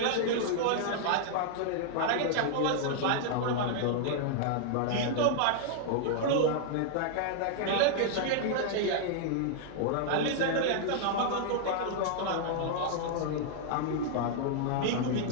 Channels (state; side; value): different; both; correlation -0.01